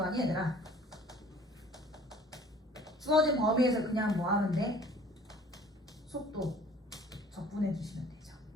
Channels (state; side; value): normal; both; correlation 0.51